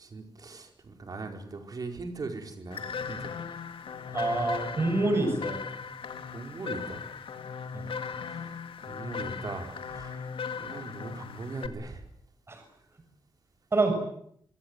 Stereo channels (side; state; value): both; normal; correlation 0.67